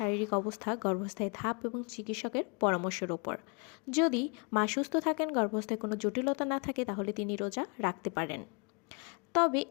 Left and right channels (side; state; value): right; quieter; 35.2 dB